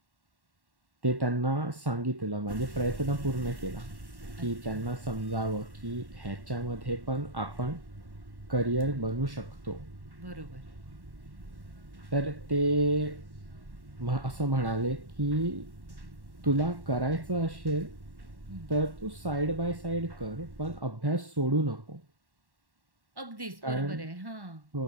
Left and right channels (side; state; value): left; late; 1.1 ms